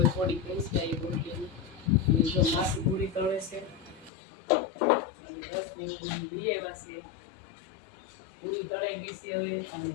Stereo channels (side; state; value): right; drops out; at 4.1 s